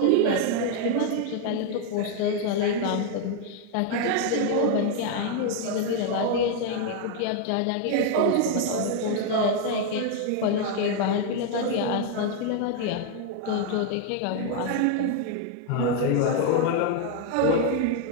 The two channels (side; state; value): both; different; correlation 0.00